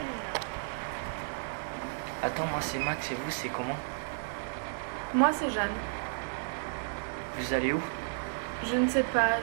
Attends, moi c'est Max et vous c'est comment? Moi, c'est Jeanne. Vous allez où? Je ne sais pas,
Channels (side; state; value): left; silent; 56 dB below the other